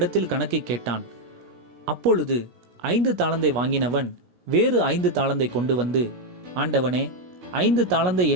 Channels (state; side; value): late; left; 17 ms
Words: கணக்கை கேட்டான். அப்பொழுது 5 தாலந்தை வாங்கினவன் வேறு 5 தாலந்தை கொண்டு வந்து, ஆண்டவனே, 5 தாலந்தை